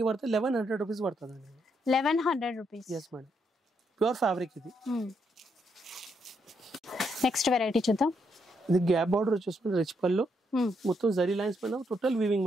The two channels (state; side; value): normal; both; correlation 0.77